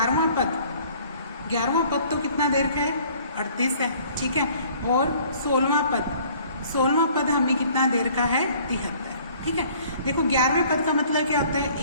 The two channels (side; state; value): both; inverted; correlation -0.55